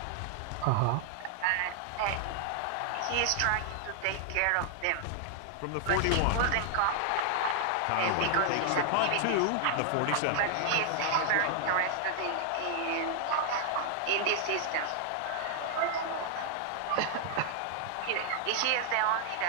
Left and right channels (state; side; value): different; both; correlation 0.00